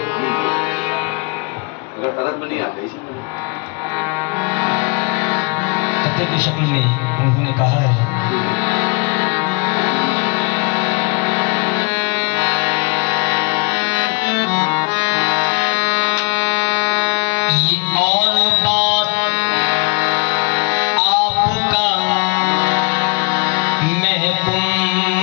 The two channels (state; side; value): quieter; right; 30.4 dB